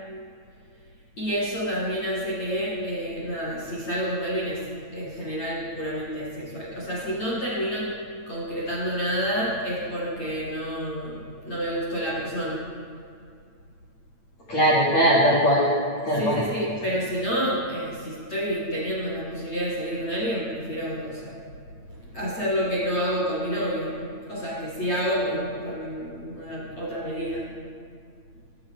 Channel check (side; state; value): right; late; 8.9 ms